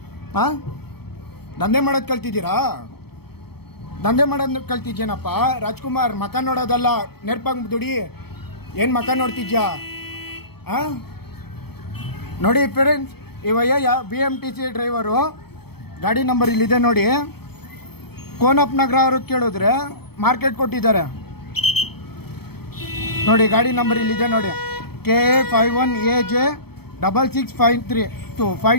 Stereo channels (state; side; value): late; right; 0.96 ms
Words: ದಂಧೆ ಮಾಡೋದು ಕಲ್ತಿದ್ದೀರಾ? ದಂಧೆ ಮಾಡೋದು ಕಲ್ತಿದ್ಯೇನಪ್ಪ? ರಾಜ್ಕುಮಾರ್, ಮಕ ನೋಡೋದಲ್ಲ, ನೆರ್ಪಂಗ್ ದುಡಿ. ಏನು ಮಕ ನೋಡ್ತಿದ್ಯಾ? ನೋಡಿ ಫ್ರೆಂಡ್ಸ್, ಇವಯ್ಯ BMTC ಡ್ರೈವರು, ಗಾಡಿ ನಂಬರ್ ಇಲ್ಲಿದೆ ನೋಡಿ. ಕೋನಪ್ಪ ನಗರ ಅವ್ರಿಗೆ ಕೇಳಿದ್ರೆ ಮಾರ್ಕೆಟ್ ಕೊಟ್ಟಿದ್ದಾರೆ ನೋಡಿ. ಗಾಡಿ ನಂಬರ್ ಇಲ್ಲಿದೆ ನೋಡಿ,